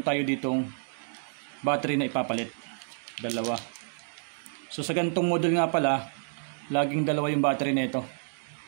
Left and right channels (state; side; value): silent; left; digital silence